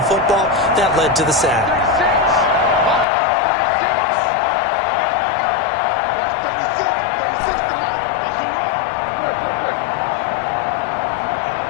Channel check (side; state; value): right; drops out; at 3.1 s